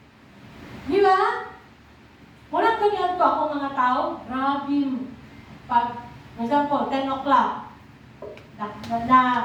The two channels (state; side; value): identical; both; correlation 1.00